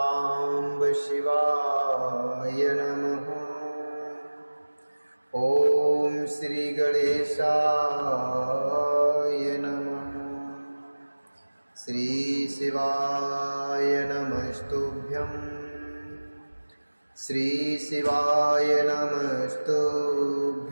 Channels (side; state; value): both; inverted; correlation -1.00